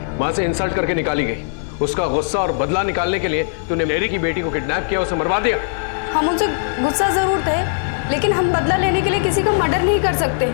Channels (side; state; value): right; silent; digital silence